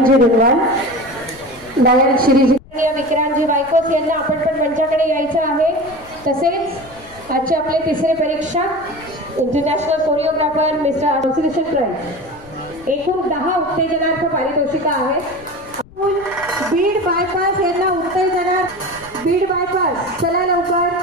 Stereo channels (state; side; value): noise; left; rumble, 23 dB below the sound